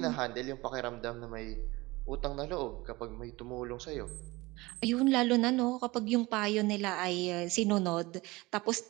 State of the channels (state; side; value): quieter; left; 21.7 dB